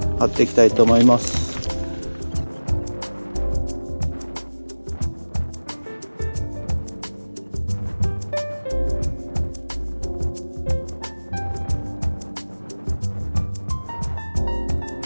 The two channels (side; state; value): both; inverted; correlation -1.00